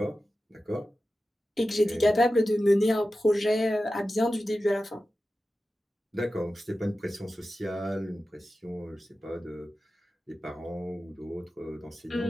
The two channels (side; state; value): both; normal; correlation 0.94